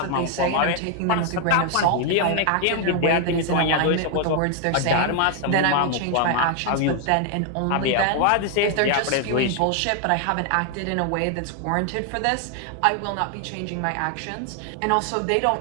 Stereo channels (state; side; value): different; both; correlation 0.00